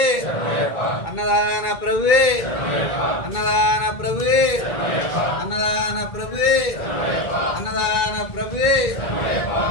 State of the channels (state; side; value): late; right; 2.2 ms